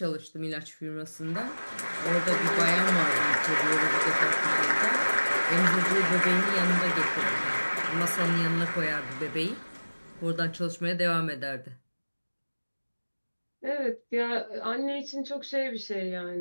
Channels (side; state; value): both; inverted; correlation -1.00